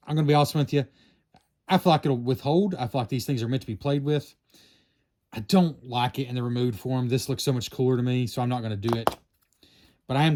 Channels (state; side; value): identical; both; correlation 1.00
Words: I'm going to be honest with you. I feel like it'll withhold. I feel like these things are meant to be played with. I don't like it in the removed form. This looks so much cooler to me, so I'm not going to do it. But I am